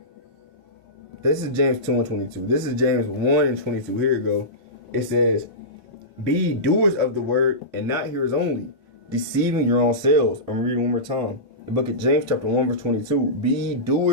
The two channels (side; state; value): both; normal; correlation -0.18